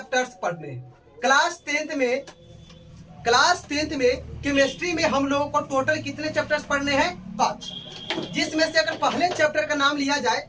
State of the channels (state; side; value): identical; both; correlation 1.00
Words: पढ़ने हैं। क्लास 10th में केमिस्ट्री में हम लोगों को टोटल कितने चैप्टर्स पढ़ने हैं? 5। जिसमें से अगर पहले चैप्टर का नाम लिया